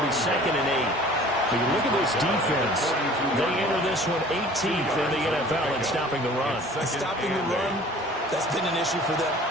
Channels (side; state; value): both; normal; correlation 0.48